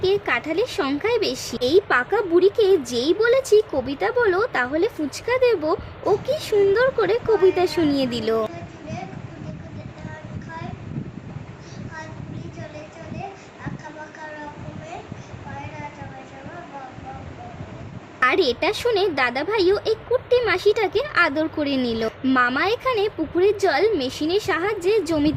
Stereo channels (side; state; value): both; identical; correlation 1.00